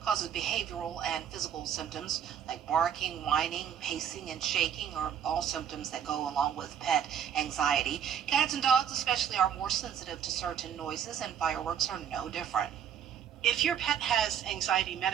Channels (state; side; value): quieter; left; 8.9 dB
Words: causes behavioral and physical symptoms like barking, whining, pacing, and shaking are all symptoms that go along with pet anxiety. Cats and dogs especially are more sensitive to certain noises, and fireworks are no different. If your pet has anxiety